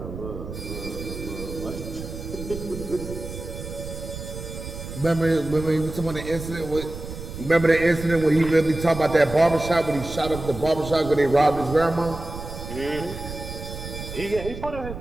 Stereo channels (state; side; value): noise; right; rumble, 9 dB below the sound